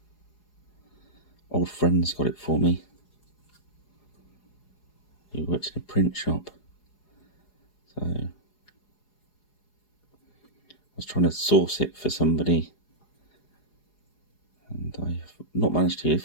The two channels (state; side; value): late; right; 4.8 ms